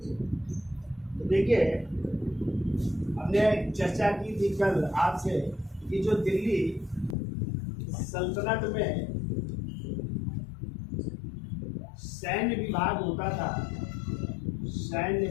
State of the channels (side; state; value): right; drops out; at 7.2 s